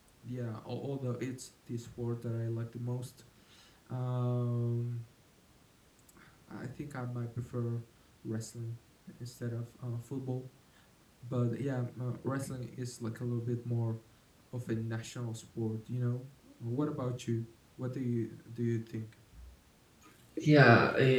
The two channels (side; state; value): both; identical; correlation 1.00